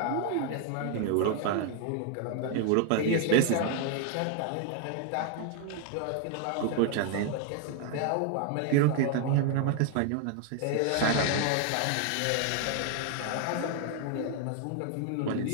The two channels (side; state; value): both; different; correlation 0.00